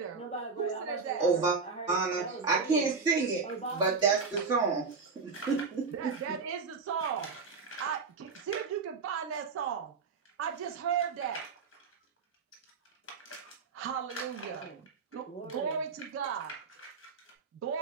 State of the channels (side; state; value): left; quieter; 4.9 dB